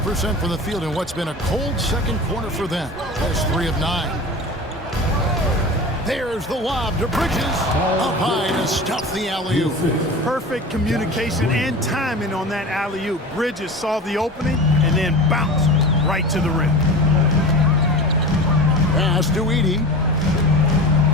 from the field in what's been a cold second quarter for them. Just 3 of 9. There's the lob to Bridges. Up high to stuff the alley-oop. Perfect communication and timing on that alley-oop. Bridges saw the opening and then bounced right to the rim. Pass to Edie.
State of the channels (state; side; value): normal; both; correlation 0.32